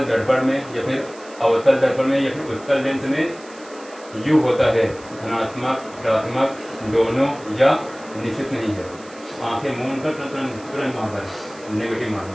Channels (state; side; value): noise; right; hiss, 22 dB below the sound